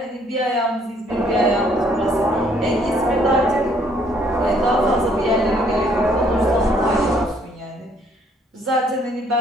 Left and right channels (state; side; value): normal; both; correlation 0.65